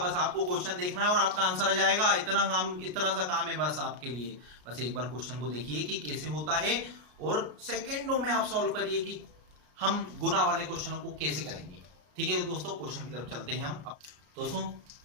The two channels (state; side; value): late; left; 33 ms